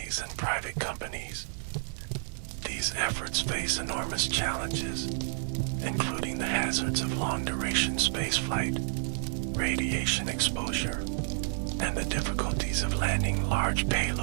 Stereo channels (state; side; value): silent; left; 58 dB below the other